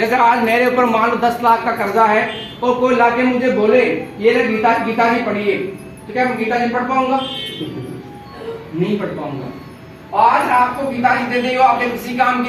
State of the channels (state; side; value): identical; both; correlation 1.00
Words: आज मेरे ऊपर मान लो 10 लाख का कर्जा है, और कोई लाके मुझे बोले ये ले गीता जी पढ़िए, तो क्या मैं गीता जी पढ़ पाऊंगा? नहीं पढ़ पाऊंगा। आज आपको गीता जी दे दी हो, आपके किसी काम